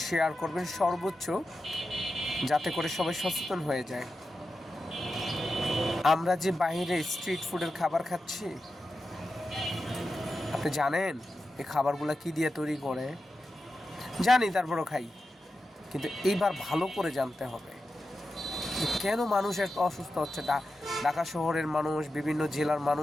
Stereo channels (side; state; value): both; normal; correlation 0.91